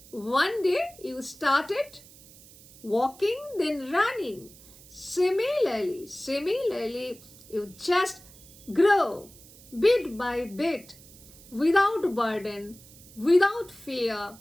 one day, you started walking, then running. Similarly, you just grow bit by bit, without burden, without fear,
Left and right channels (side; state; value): right; noise; hiss, 22 dB below the sound